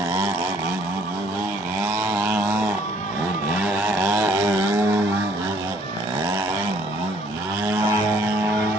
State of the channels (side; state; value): both; normal; correlation 0.61